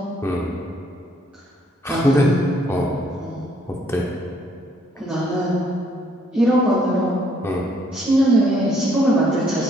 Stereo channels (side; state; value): both; normal; correlation 0.67